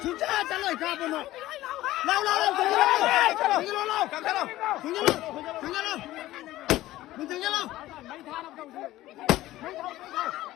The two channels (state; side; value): quieter; right; 15.9 dB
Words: Xuống trả lời capo nó. Lâu, lâu, lâu, thằng lâu, lâu, lâu, thằng lâu, thằng lâu, thằng lâu. Mình thằng lâu.